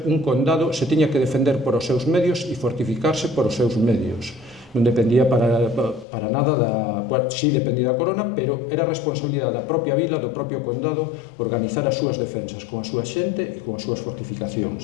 un condado, se tiña que defender por os seus medios e fortificarse por os seus medios. Non dependía para nada sí dependía da corona, pero era responsabilidade da propia vila, do propio condado, organizar as súas defensas con a súa xente e con as súas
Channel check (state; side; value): drops out; right; at 6.1 s